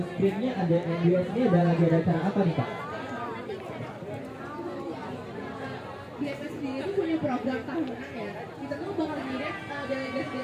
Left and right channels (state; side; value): identical; both; correlation 1.00